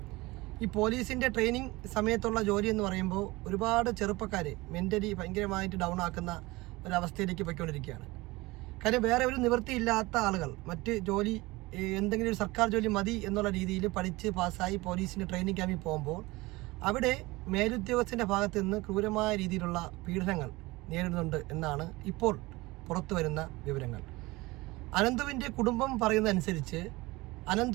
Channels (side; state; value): left; quieter; 21.5 dB